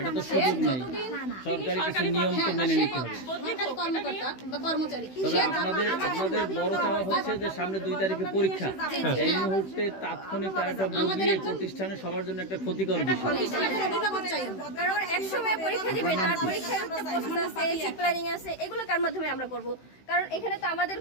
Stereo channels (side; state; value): right; late; 16 ms